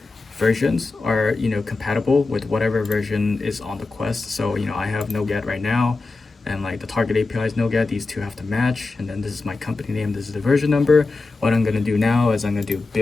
versions are, you know, compatible with whatever version is on the Quest. So you know, I have NoGet right now, and like the target API is NoGet. These two have to match, and then this is my company name, this is the version number. What I'm gonna do now is I'm gonna do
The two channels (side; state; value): right; quieter; 3.6 dB